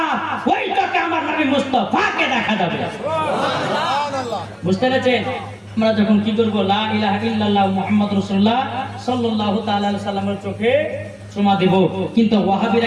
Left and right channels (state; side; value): identical; both; correlation 1.00